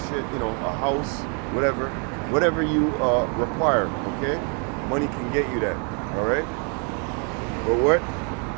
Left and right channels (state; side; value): quieter; left; 37.9 dB